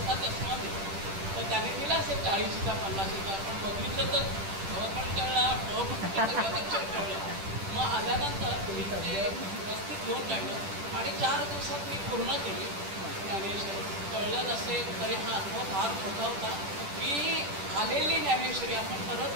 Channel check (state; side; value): late; left; 10 ms